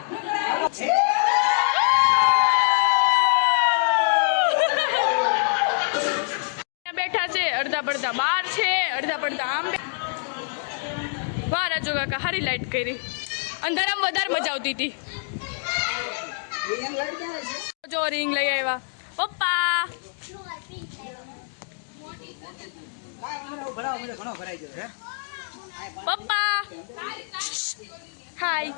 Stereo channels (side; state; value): right; silent; digital silence